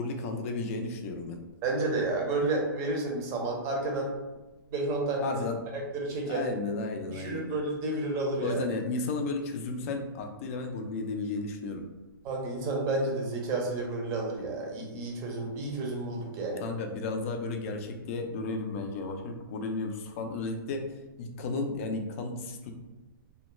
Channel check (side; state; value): right; noise; rumble, 29 dB below the sound